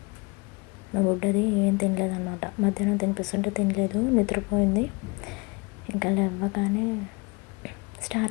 మా బుడ్డది ఏం తినలేదన్నమాట. మధ్యాహ్నం తినిపిస్తుంటే తినలేదు, నిద్రపోయింది. ఇంకా లేవగానే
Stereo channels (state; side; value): quieter; right; 27.5 dB